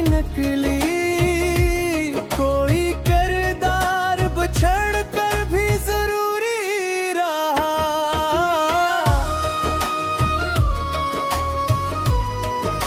नकली, कोई किरदार बछड़ कर भी जरूरी रहा।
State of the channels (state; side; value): identical; both; correlation 1.00